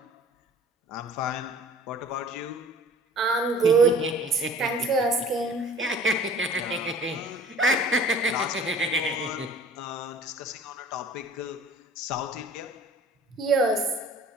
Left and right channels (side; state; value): both; normal; correlation 0.48